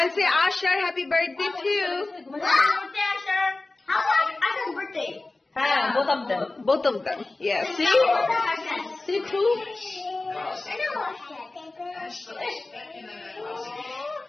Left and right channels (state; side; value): quieter; right; 3.1 dB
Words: say Ashar happy birthday too. Happy birthday, Asher. How about Asher's birthday? Both of them. Both of them. Yeah. See? See too?